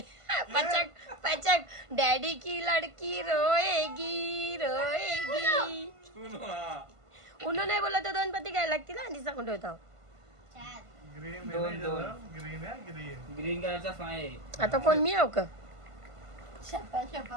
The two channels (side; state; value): left; late; 1.5 ms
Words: पचक पचक डॅडी की लड़की रोएगी रोएगी उन्हो नाही बोलत तर 2 पत्ती घ्यायला लागतील आणि सांगून ठेवतो ग्रीन कलरचा फाय आहे आता कोण मी आहो का